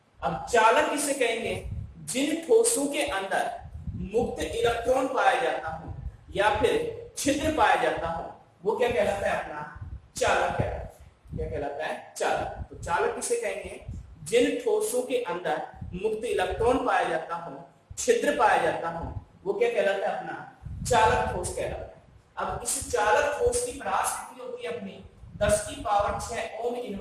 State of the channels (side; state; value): both; identical; correlation 1.00